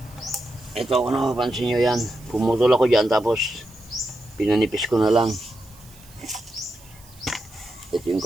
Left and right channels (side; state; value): right; noise; hiss, 24 dB below the sound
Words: Ito kung napapansin nyo yan. Pumutol ako dyan tapos pinanipis ko na lang. Ito yung